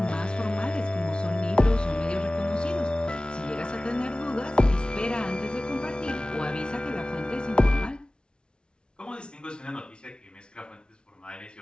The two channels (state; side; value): late; right; 0.056 ms